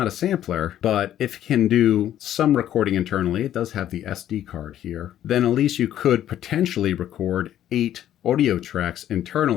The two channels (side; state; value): right; quieter; 11.6 dB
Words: a sampler, but if it can do some recording internally, it does have the SD card here, then at least you could potentially record 8 audio tracks